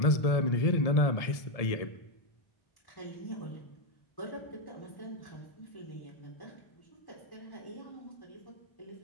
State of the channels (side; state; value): right; late; 1.7 ms